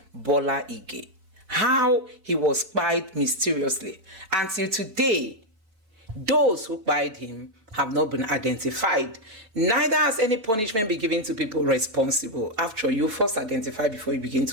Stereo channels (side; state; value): left; late; 4.7 ms